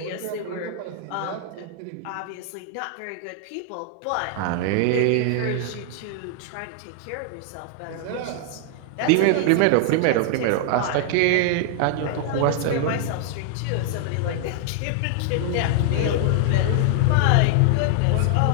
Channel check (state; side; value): different; both; correlation 0.00